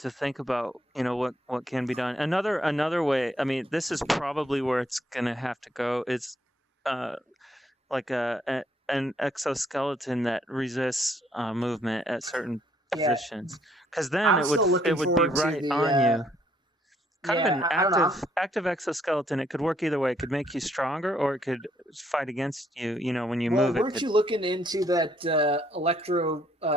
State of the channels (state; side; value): normal; both; correlation 0.68